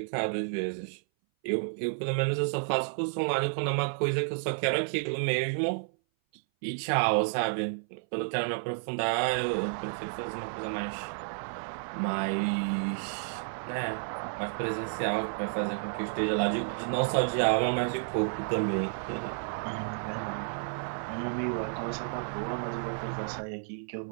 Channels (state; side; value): silent; left; 57 dB below the other